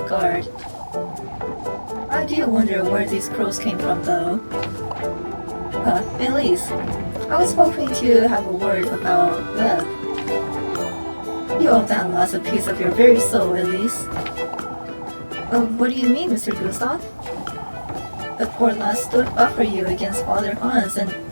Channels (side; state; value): both; inverted; correlation -1.00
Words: guard. I do wonder where these crows came from, though. Elise, I was hoping to have a word about Webb. You owe that lass a piece of your very soul, Elise. What do you mean, Mr. Gustav? The poor lass stood up for you against Father Hans and